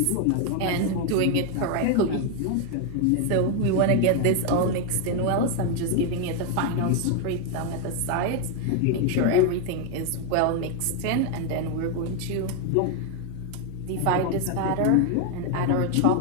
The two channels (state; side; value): different; both; correlation 0.01